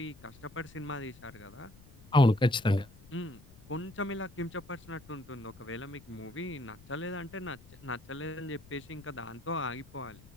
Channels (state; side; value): noise; left; rumble, 22 dB below the sound